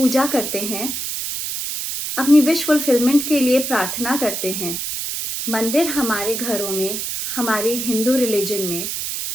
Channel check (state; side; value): noise; right; hiss, 4 dB below the sound